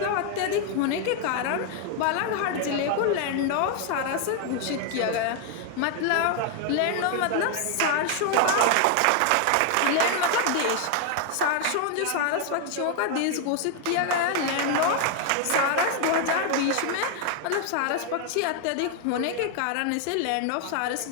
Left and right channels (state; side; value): different; both; correlation 0.00